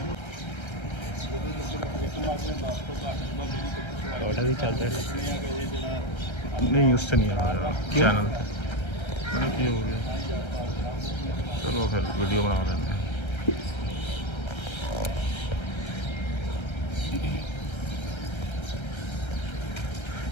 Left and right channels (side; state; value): right; late; 1.3 ms